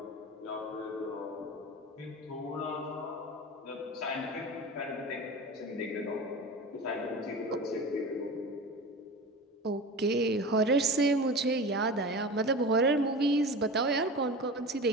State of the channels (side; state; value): both; normal; correlation 0.31